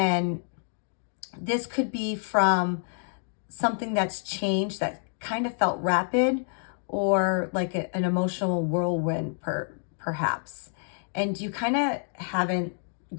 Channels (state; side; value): silent; right; digital silence